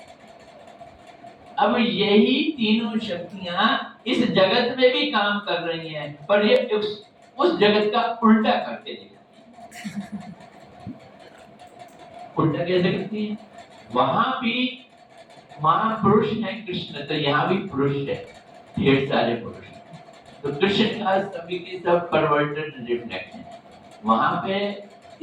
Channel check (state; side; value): identical; both; correlation 1.00